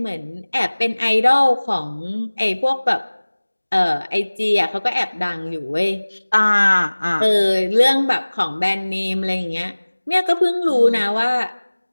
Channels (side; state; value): both; inverted; correlation -1.00